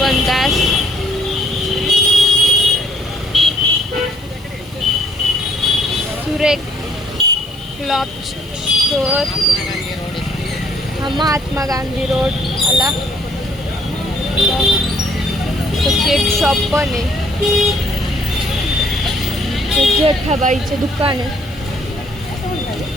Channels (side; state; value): right; noise; hiss, 26 dB below the sound